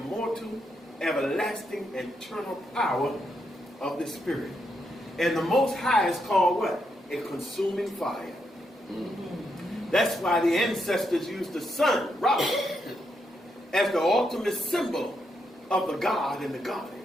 everlasting, eternal power of the spirit. And the Most High is called what? A consuming fire. That's why the ancestors used the sun, Ra, as the ultimate symbol of the God and the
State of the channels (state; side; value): normal; both; correlation 0.81